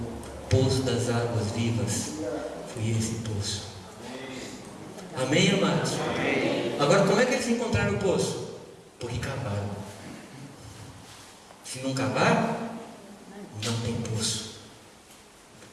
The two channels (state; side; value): identical; both; correlation 1.00